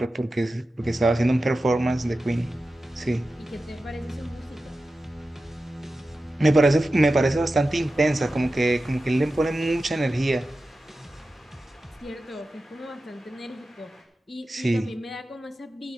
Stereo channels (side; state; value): both; normal; correlation 0.93